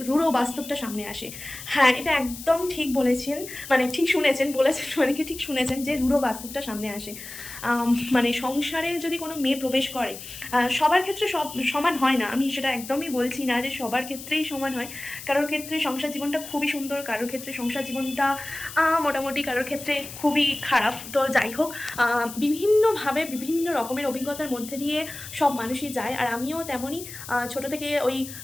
রূঢ় বাস্তবটা সামনে আসে। হ্যাঁ, এটা একদম ঠিক বলেছেন, মানে ঠিক শুনেছেন, বলেছেন মানে কি ঠিক শুনেছেন, যে রূঢ় বাস্তবটা সামনে আসে। মানে সংসারে যদি কোনো মেয়ে প্রবেশ করে, সবার ক্ষেত্রে সব সমান হয় না, আমি সেটা একদমই বলছি না যে সবার ক্ষেত্রেই সমান হয়। কারোর ক্ষেত্রে সংসার জীবনটা খুবই সুন্দর, কারোর ক্ষেত্রে সংসার জীবনটা মোটামুটি, কারোর ক্ষেত্রে খুবই খারাপ। তো যাই হোক, বিভিন্নভাবে বিভিন্ন রকমের অভিজ্ঞতার মধ্যে দিয়ে সব মানুষই যায়, আর আমিও তেমনই। ছোটো থেকে ওই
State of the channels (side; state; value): left; noise; hiss, 12 dB below the sound